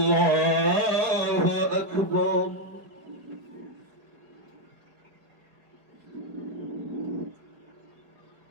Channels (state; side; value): late; left; 4.8 ms